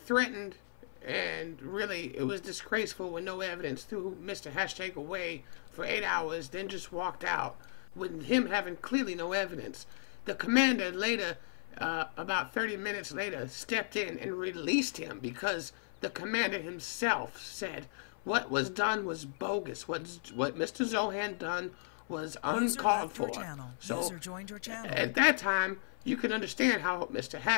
and really, it was disgraceful with no evidence. Threw Mr. Hashtag away for 8 hours, then just walked out with him having clearly no evidence. The commander later, about 30 minutes later, stepped in and released him because the commander himself said what was done was bogus. What Mr. Zohan done was uncalled for. So user joined your channel. At that time, you can understand how Mr.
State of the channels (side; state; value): right; silent; 54 dB below the other